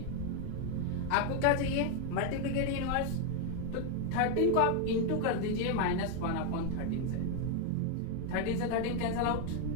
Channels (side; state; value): both; different; correlation 0.01